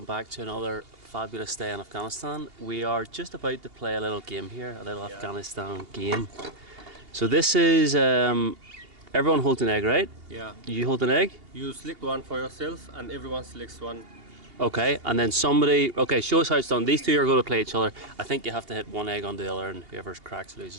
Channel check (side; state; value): left; late; 2.8 ms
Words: back to another fabulous day in Afghanistan. We are just about to play a little game here, a little Afghanistan game. So this is, everyone holds an egg, right? Yeah. You hold an egg? You select one for yourself and everyone selects one. Okay, and then somebody, okay, show us how it's done. These two are going to play each other. I think you have to hit one egg on the other and whoever cracks